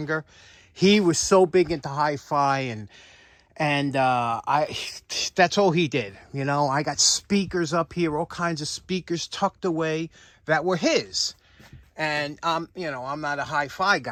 He was so big into hi-fi, and that's all he did. You know, I got speakers up here, all kinds of speakers tucked away that were his. And you know, I'm not a hi-fi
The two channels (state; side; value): identical; both; correlation 1.00